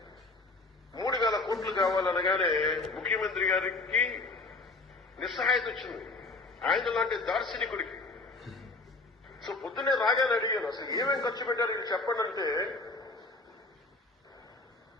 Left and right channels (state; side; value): quieter; right; 3.3 dB